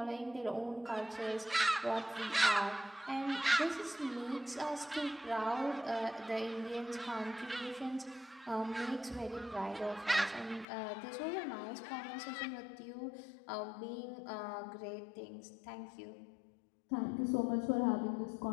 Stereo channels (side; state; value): right; drops out; at 10.7 s